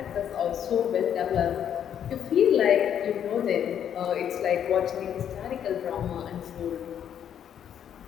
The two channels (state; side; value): quieter; right; 9.3 dB